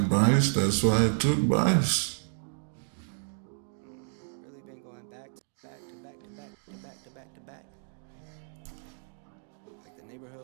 that's why I took buys. Really been going back to back to back to back to back to back to back. Like the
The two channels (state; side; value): silent; left; digital silence